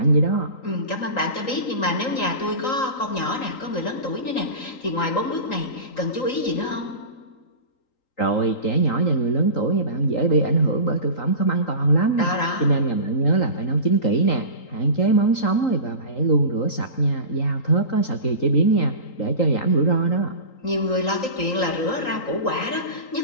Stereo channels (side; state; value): right; late; 3.8 ms